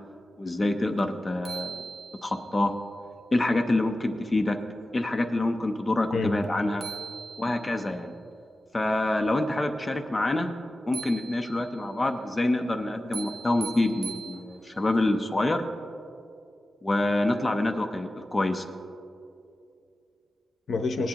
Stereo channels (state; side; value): normal; both; correlation 0.94